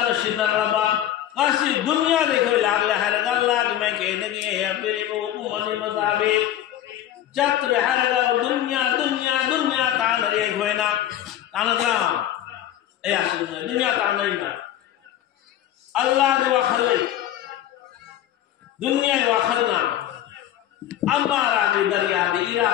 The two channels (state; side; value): quieter; right; 12.0 dB